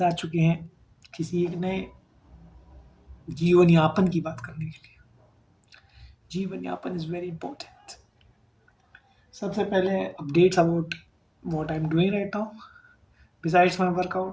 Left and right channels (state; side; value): identical; both; correlation 1.00